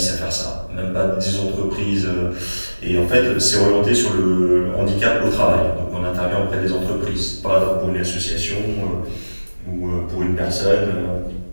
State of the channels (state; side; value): inverted; both; correlation -1.00